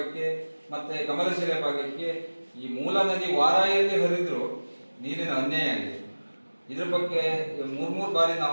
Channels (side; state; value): both; inverted; correlation -1.00